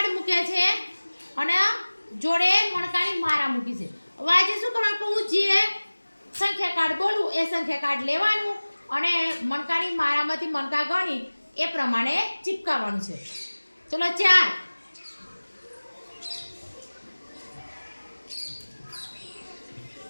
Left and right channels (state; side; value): inverted; both; correlation -1.00